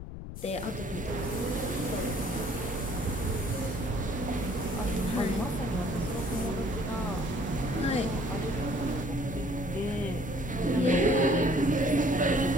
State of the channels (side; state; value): left; noise; rumble, 9 dB below the sound